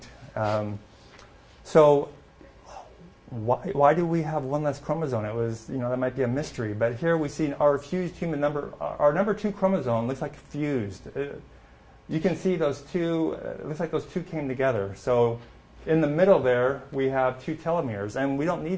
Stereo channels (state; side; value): identical; both; correlation 1.00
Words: So why do we have one less chromosome? It was, that might be a mystery. But here we see our fused human our number 2 chromosome looks like fused. You can see those 2, it looks like those 2 came together. So In the middle there, we have 2 telomeres, and we don't